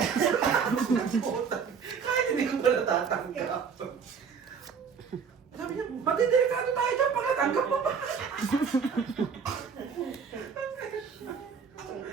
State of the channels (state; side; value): quieter; left; 6.3 dB